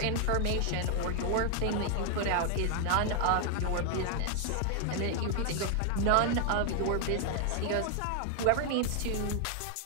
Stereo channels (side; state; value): both; different; correlation 0.00